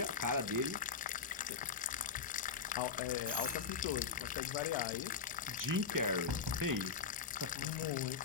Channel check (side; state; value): right; quieter; 5.8 dB